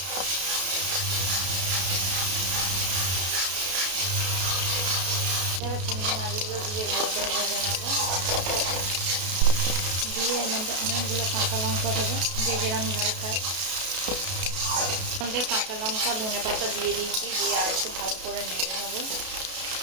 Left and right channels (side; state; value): left; late; 32 ms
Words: এবার চিংড়ি মাছগুলো দিয়ে ভালো করে ভেজে নেবো। দিয়ে এর মধ্যে অনেকগুলো কাঁচা লঙ্কা দেবো, যে যেরকম ঝাল খায়। কাঁচা লঙ্কা ধনে পাতা দিয়ে দিয়েছি, দিয়ে আর একটু ভালো করে নেড়ে নেবো।